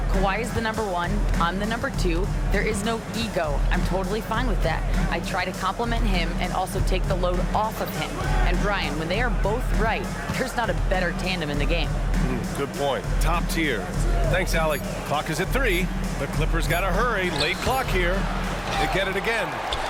Kawhi is the number 1, I'm the number 2. There is no ego. I'm totally fine with that. I try to compliment him and also take the load off of him. And Brian, when they are both right, there's not a better tandem in the game. Good point. Top tier. Thanks, Allie. Clock is at 3. The Clippers got to hurry. Late clock here. They get it again.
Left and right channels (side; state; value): both; identical; correlation 1.00